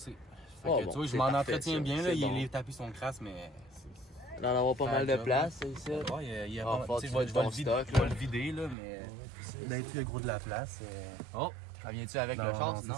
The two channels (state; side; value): drops out; left; at 8.8 s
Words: Fait que, Bon, tu vois, je c'est m'en parfait, entretiens ça. bien, là, C'est bon. les tapis sont crasses, mais Il va en avoir pas mal de place, c'est ça? ouais, il y a Ah, pas faut tu sais, que je tu vais ton le vider, stock, je vais là. le vider, là, mais Ben, il y a gros de la place. Oh! Ça vient-tu avec le char, sinon?